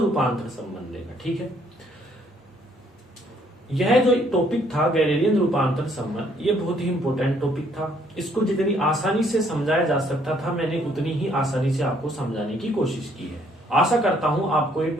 रूपांतरण संबंध देखा। ठीक है, यह जो टॉपिक था गैलीलियन रूपांतरण संबंध, ये बहुत ही इंपॉर्टेंट टॉपिक था। इसको जितनी आसानी से समझाया जा सकता था मैंने उतनी ही आसानी से आपको समझाने की कोशिश की है। आशा करता हूं आपको ये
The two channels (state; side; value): normal; both; correlation 0.66